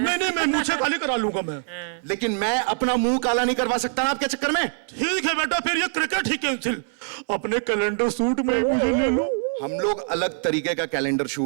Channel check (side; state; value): left; silent; 62 dB below the other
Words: मैं मूंछें काली करा लूंगा मैं. लेकिन मैं अपना मुंह काला नहीं करवा सकता ना आपके चक्कर में. ठीक है बेटा, फिर ये क्रिकेट ही कैंसिल. अपने कैलेंडर शूट में ही मुझे ले लो. हम लोग अलग तरीके का कैलेंडर